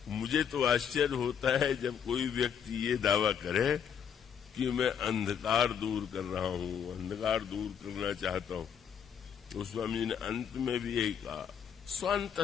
मुझे तो आश्चर्य होता है जब कोई व्यक्ति ये दावा करे कि मैं अंधकार दूर कर रहा हूं, अंधकार दूर करना चाहता हूं। गोस्वामी जी ने अंत में भी यही कहा,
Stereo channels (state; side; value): quieter; right; 8.0 dB